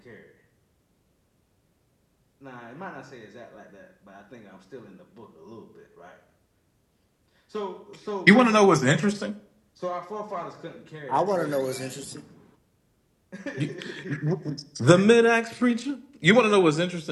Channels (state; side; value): identical; both; correlation 1.00